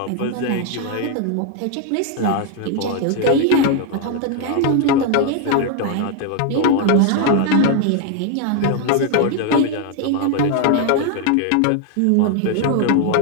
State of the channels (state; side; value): different; both; correlation 0.01